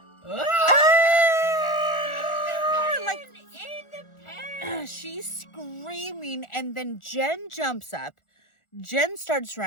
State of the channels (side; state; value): right; late; 1.4 ms